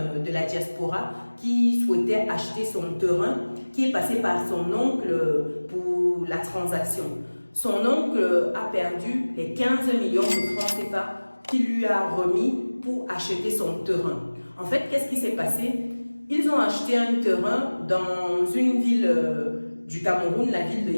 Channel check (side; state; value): both; inverted; correlation -1.00